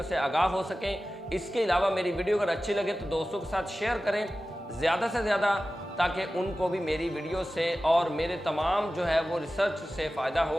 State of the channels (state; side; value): normal; both; correlation 0.95